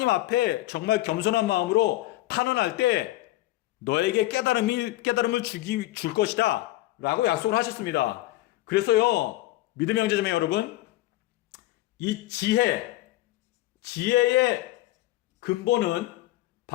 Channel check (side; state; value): right; quieter; 17.0 dB